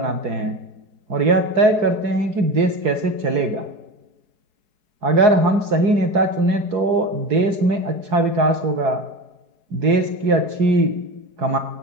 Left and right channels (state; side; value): late; left; 4.7 ms